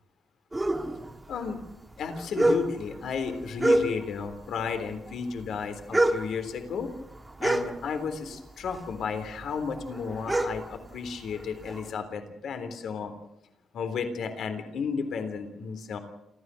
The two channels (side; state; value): both; normal; correlation 0.86